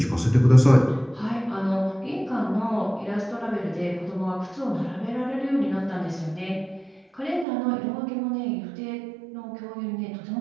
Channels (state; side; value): drops out; left; at 7.5 s